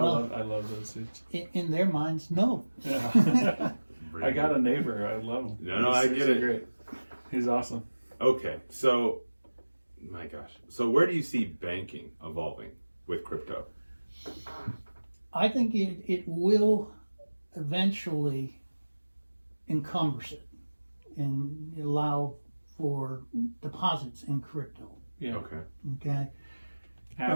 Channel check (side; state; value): both; inverted; correlation -1.00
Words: those dudes. In their minds, no. Yeah. I got a neighbor. I love him. No, I get it. Great. He's awesome. Okay, so, my gosh. So where do you see banking evolving with crypto? I think it will eventually encumber it and allow for deposits in crypto. Yeah. Okay. Okay.